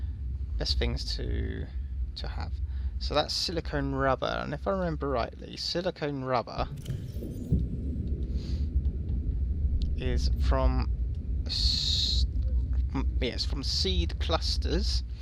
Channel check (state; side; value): identical; both; correlation 1.00